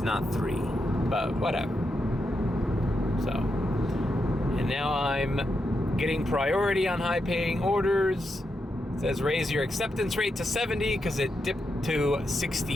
not 3, but whatever. So, and now I'm getting priority on high-paying orders. It says raise your acceptance rate to 70 because it dipped to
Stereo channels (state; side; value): normal; both; correlation 0.84